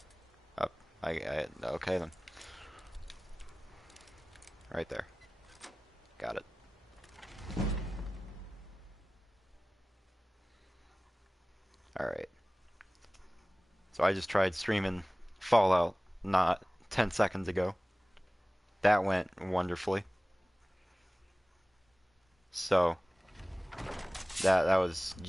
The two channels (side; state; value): both; normal; correlation 0.98